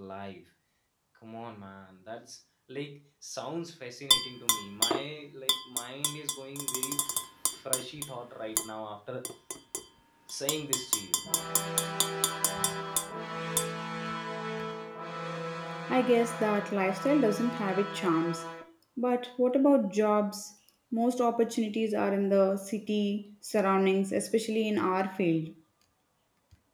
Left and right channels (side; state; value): both; identical; correlation 1.00